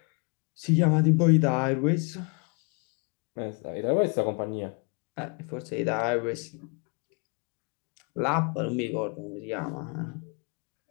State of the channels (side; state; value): right; quieter; 34.5 dB